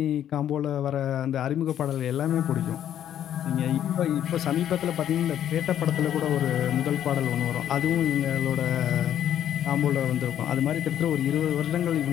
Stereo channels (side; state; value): right; quieter; 10.5 dB